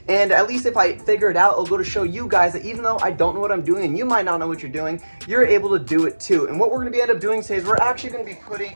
And at least if I figure it out, it'll go to show you guys that even though I don't know what I'm doing and you might not know what you're doing, you're able to do it too. And what we're gonna end up doing today is we're actually gonna be putting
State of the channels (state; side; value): inverted; both; correlation -1.00